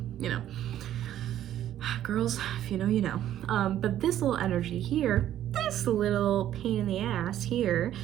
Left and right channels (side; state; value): left; quieter; 11.8 dB